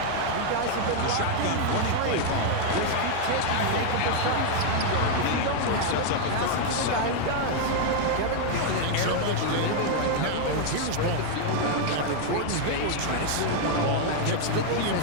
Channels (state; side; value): different; both; correlation 0.00